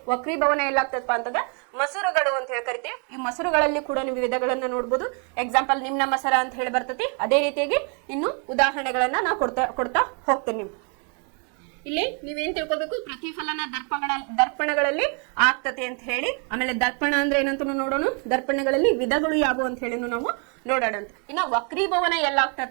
ವಕ್ರೀಭವನ ಎಲ್ಲಾಗ್ತದಪ್ಪ ಅಂತಂದ್ರೆ ಮಸೂರಗಳು ಅಂತ ಹೇಳಿ ಕರಿತೇವೆ. ಈ ಮಸೂರಗಳಲ್ಲಿ ಕೂಡ ನೀವು ವಿಧಗಳನ್ನ ನೋಡ್ಬೋದು. ಎಕ್ಸಾಂಪಲ್ ನಿಮ್ನ ಮಸರ ಅಂತ ಹೇಳಿ ಬರ್ತೈತಿ. ಅದೇ ರೀತಿಯಾಗಿ ಇನ್ನು ಉದಾಹರಣೆಗಳನ್ನ ನಾ ಕೊಡ್ತಾ ಹೋಗ್ತೇನೆ. ಇಲ್ಲಿ ನೀವೇನ್ ತಿಳ್ಕೊಬೇಕು, ಪ್ರತಿಫಲನ ದರ್ಪಣಗಳಲ್ಲಿ ಆಗ್ತತೆ ಅಂತ ಹೇಳಿ. ಆಮೇಲೆ ದರ್ಪಣ ಅಂದ್ರೆ ಏನಂತ ನೋಡೋಣ, ದರ್ಪಣಗಳಲ್ಲಿ ವಿಧಗಳು ಯಾವುವು ಅಂತ ಹೇಳಿ ನಾವು ನೋಡೋಣ. ಇನ್ನ ವಕ್ರೀಭವನ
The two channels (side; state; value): left; quieter; 38.1 dB